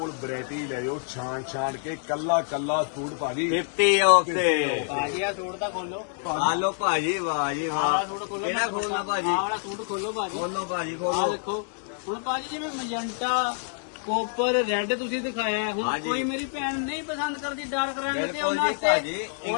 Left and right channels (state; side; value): silent; right; digital silence